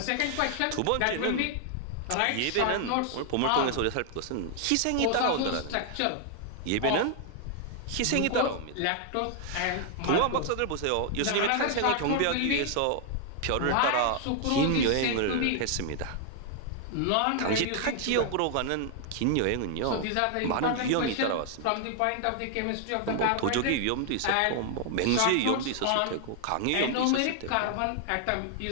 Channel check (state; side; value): different; both; correlation 0.00